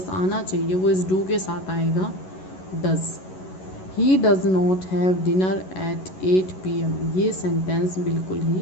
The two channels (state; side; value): late; right; 11 ms